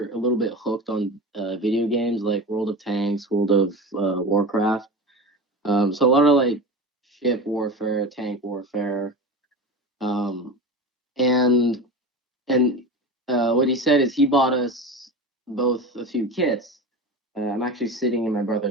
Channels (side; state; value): both; normal; correlation 0.28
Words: a little bit hooked on video games like World of Tanks, World of Warcraft. So a lot of like ship warfare, tank warfare, um, and and what he said is he bought us both a few kits. I'm actually sitting in my